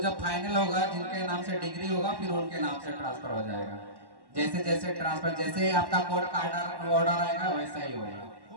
फाइनल होगा जिनके नाम से डिग्री होगा फिर उनके नाम से ट्रांसफर हो जाएगा। जैसे जैसे ट्रांसफर, जैसे आपका कोर्ट का ऑर्डर आएगा वैसा ही होगा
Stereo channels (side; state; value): left; late; 1.1 ms